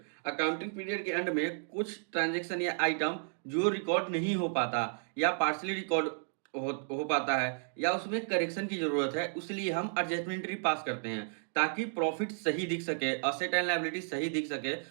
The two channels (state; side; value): silent; left; digital silence